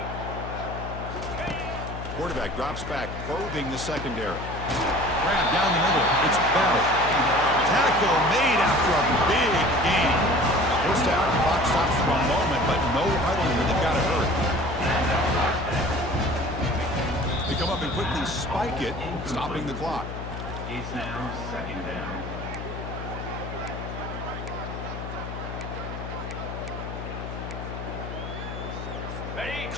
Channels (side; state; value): left; noise; hum, 8 dB below the sound